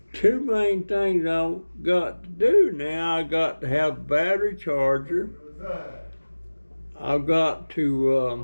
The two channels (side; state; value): both; inverted; correlation -1.00